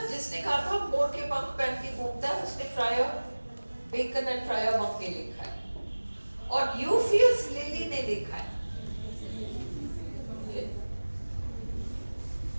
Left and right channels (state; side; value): inverted; both; correlation -1.00